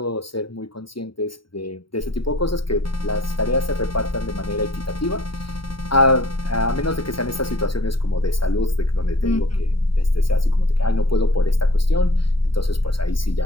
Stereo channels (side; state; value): right; late; 0.73 ms